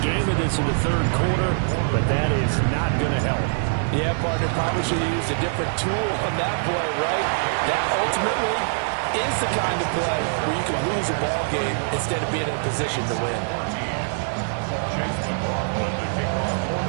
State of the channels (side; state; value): left; silent; digital silence